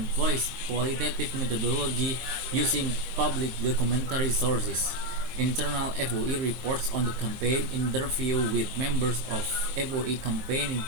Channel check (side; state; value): left; late; 23 ms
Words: qualitative methodology using public documentary sources, internal FoE reports on the campaign, interview with members of FoE campaigning